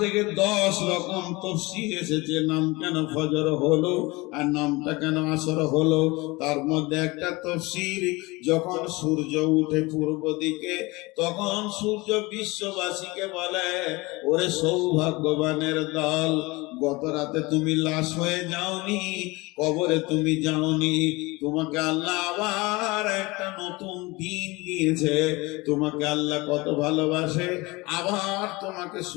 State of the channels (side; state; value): right; quieter; 23.3 dB